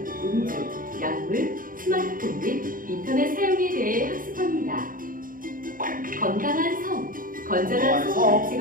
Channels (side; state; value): left; late; 0.40 ms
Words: 음주, 약물, 스마트폰 및 인터넷 사용에 대해 학습합니다. 건강한 성, 건전한 성